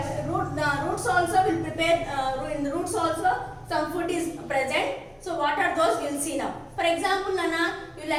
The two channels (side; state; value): both; identical; correlation 1.00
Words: roots also will prepare. In the roots also some food is present. So what are those? We'll see now. For example, Nana, you